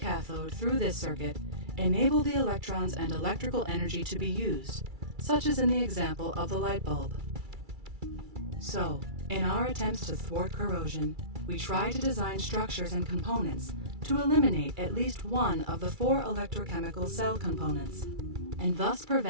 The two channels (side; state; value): left; late; 2.3 ms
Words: through this circuit enable the electrons and electrical energy to be used, such as in the example of the light bulb. So, in our attempts to thwart corrosion, we try to design structures and components to eliminate at least one of the four electrochemical cell components, and thus